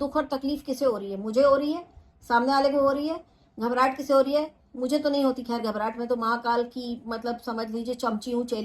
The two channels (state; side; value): identical; both; correlation 1.00